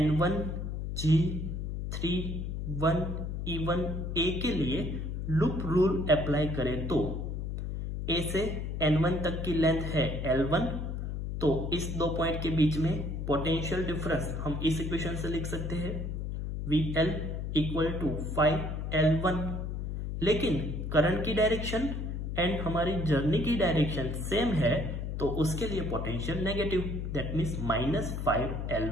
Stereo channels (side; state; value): left; noise; hum, 4 dB below the sound